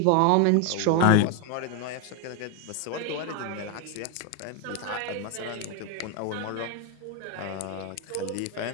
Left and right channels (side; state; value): both; different; correlation 0.02